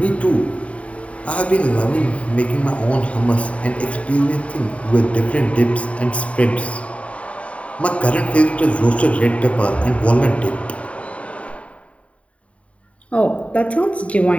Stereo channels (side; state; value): right; late; 0.065 ms